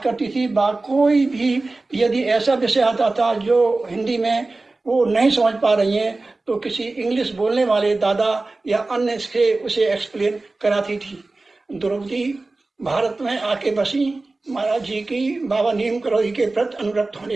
थी। कोई भी यदि ऐसा विषय आता था जो हिंदी में वो नहीं समझ पा रही हैं, तो किसी इंग्लिश बोलने वाले दादा या अन्य से उसे एक्सप्लेन कराती थी। द्रौपदी भारत में आके बसी महाराज जी की बाबा नीम करौली के प्रति अनुरक्त होने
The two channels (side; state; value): left; quieter; 3.3 dB